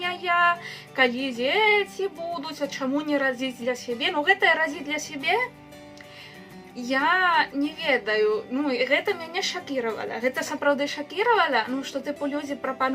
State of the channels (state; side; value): identical; both; correlation 1.00